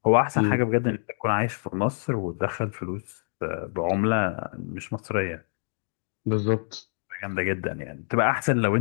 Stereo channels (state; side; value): silent; right; digital silence